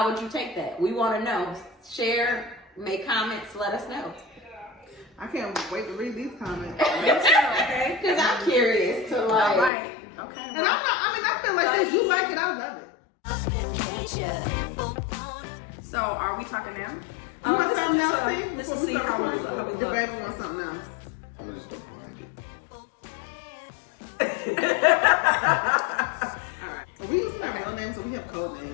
would you take that? We want to know. Share, make comments, let us know. I can't wait to read these comments. Okay. Because I'm curious to like. All right. Okay. And I feel like if you like it, I love it. So, are we talking now? You want something else, see? Let's Before we see start how we recording? look. The baby wants something else. Alright. We used to have real names, so we have code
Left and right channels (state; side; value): drops out; right; at 9.7 s